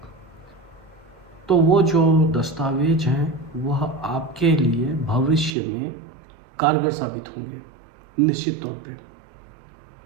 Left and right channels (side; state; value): left; drops out; at 5.6 s